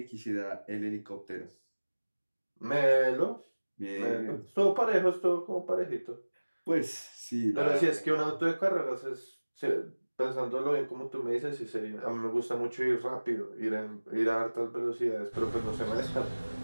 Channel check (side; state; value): both; inverted; correlation -1.00